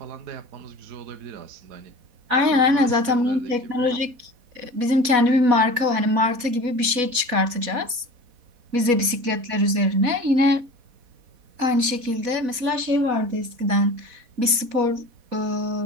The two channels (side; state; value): left; late; 4.1 ms